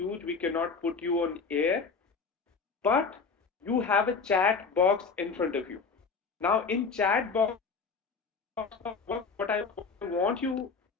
We cannot put you on air, but you have a chat box in front of you. Now, in chat box, what I want you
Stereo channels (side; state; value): right; quieter; 4.9 dB